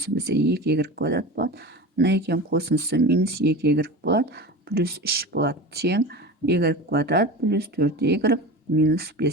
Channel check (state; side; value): normal; both; correlation 0.30